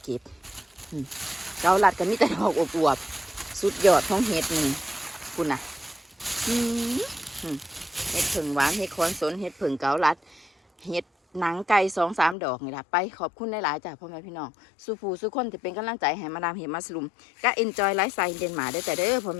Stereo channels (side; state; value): right; drops out; at 12.4 s